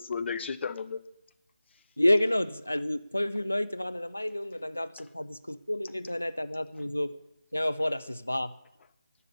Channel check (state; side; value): inverted; both; correlation -0.97